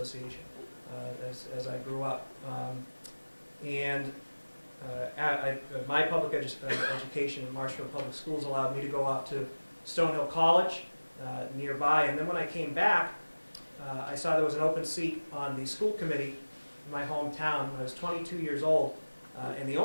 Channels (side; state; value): both; inverted; correlation -1.00